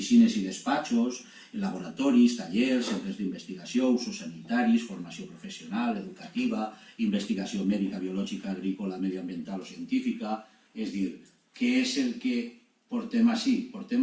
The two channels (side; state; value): both; identical; correlation 1.00